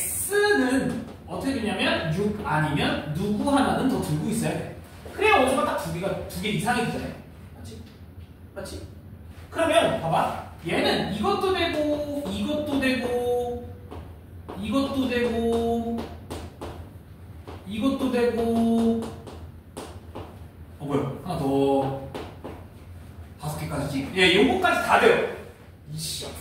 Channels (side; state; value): both; identical; correlation 1.00